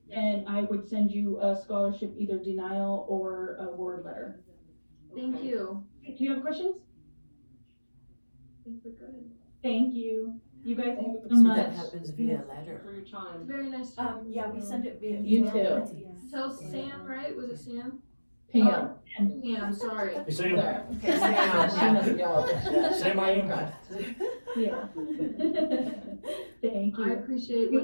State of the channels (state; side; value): inverted; both; correlation -1.00